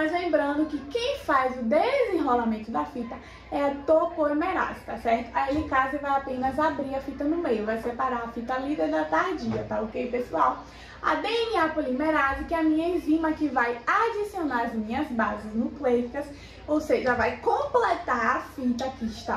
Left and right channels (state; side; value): identical; both; correlation 1.00